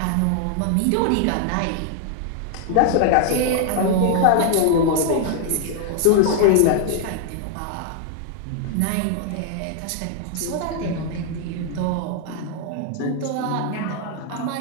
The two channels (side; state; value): both; different; correlation 0.00